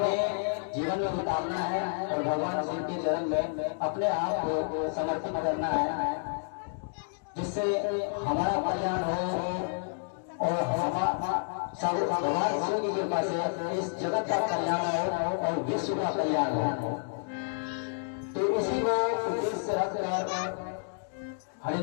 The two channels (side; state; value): right; silent; digital silence